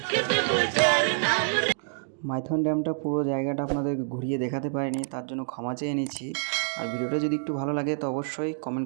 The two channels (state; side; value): silent; left; 58 dB below the other